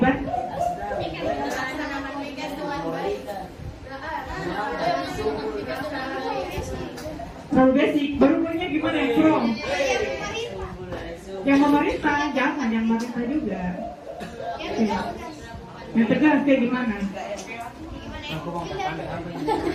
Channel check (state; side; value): identical; both; correlation 1.00